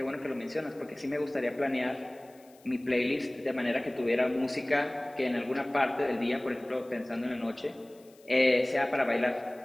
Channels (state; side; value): noise; left; hiss, 28 dB below the sound